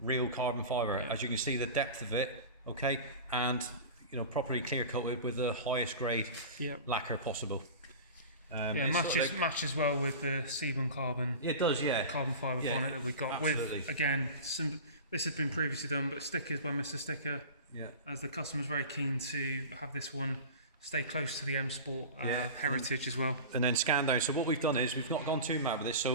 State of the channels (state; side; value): inverted; both; correlation -0.33